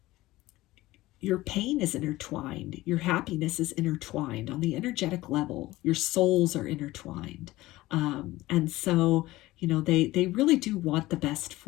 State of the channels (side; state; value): right; quieter; 17.9 dB